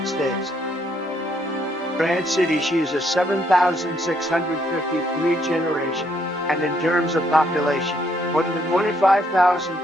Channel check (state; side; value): normal; both; correlation 0.71